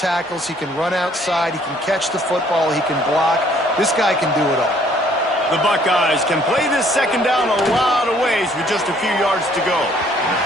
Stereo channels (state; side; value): normal; both; correlation 0.62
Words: he can run outside, he can catch the football, he can block. This guy can do it all. The Buckeyes can play this 2nd down a lot of ways with just a few yards to go.